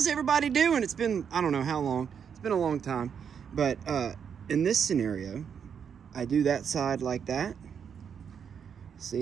everybody doing? It's been, I don't know how long. It's been a long time. But in this scenario, I do that side like that.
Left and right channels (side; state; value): left; quieter; 7.4 dB